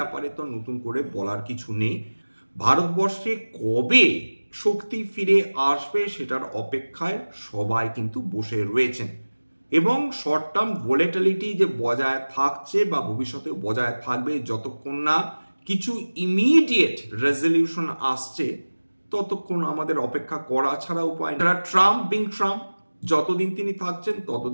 তো নতুন করে বলার কিছু নেই। ভারতবর্ষে কবে শক্তি ফিরে আসবে সেটার অপেক্ষায় সবাই কিন্তু বসে রয়েছেন, এবং শর্ট টার্ম ভোলেটিলিটি যে বজায় থাকছে বা ভবিষ্যতে বজায় থাকবে যতক্ষণ না কিছু ইমিডিয়েট রেজলিউশন আসছে ততক্ষণ আমাদের অপেক্ষা করা ছাড়া উপায় নেই। ট্রাম্প যতদিন তিনি থাকছেন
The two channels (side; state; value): both; inverted; correlation -1.00